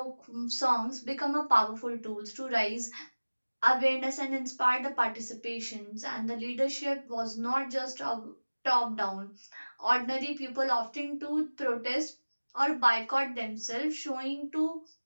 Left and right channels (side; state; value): both; inverted; correlation -1.00